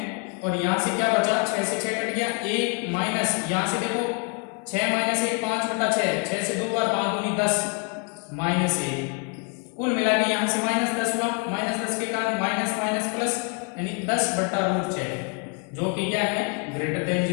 और यहाँ से क्या बचा, 6 से 6 कट गया, 1 माइनस यहाँ से देखो 6 - 1 5/6, 6 से 2 बार 5 दूनी 10 -1, कुल मिला के यहाँ से -10 हुआ, -10 के कारण माइनस माइनस प्लस यानी 10/√6 जो कि क्या है ग्रेटर देन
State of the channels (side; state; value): right; quieter; 36.4 dB